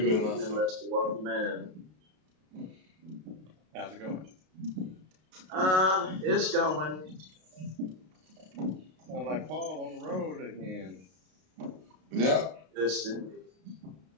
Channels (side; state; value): left; late; 32 ms